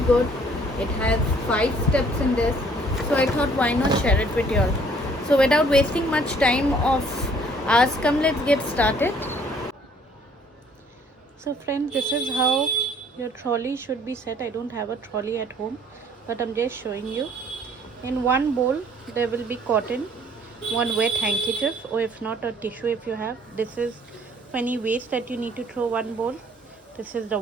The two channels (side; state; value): both; normal; correlation 0.59